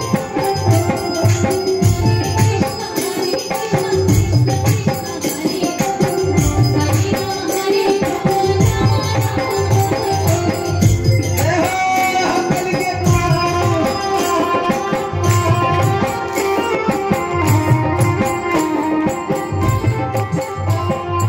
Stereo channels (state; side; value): identical; both; correlation 1.00